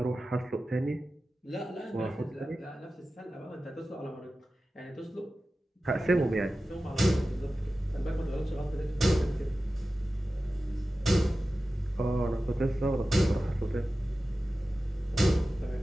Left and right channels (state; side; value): normal; both; correlation 0.94